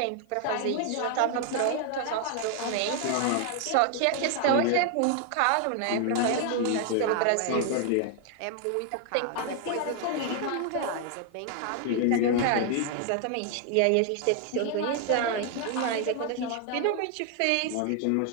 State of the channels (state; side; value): different; both; correlation 0.00